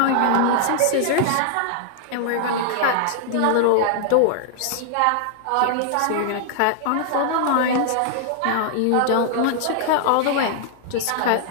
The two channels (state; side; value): different; both; correlation -0.01